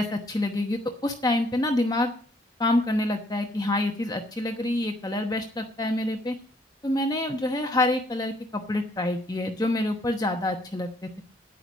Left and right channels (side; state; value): both; normal; correlation 0.66